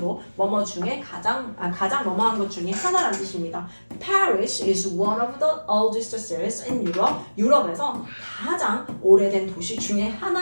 뭐뭐 중에 가장 뭐뭐한 것 중에 하나라는 뜻입니다. Paris is one of the oldest cities in Europe. 유럽에서 가장 오래된 도시 중에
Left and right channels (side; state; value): both; inverted; correlation -1.00